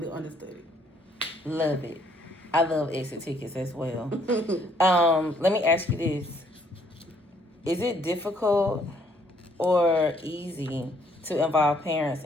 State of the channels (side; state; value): both; normal; correlation 0.66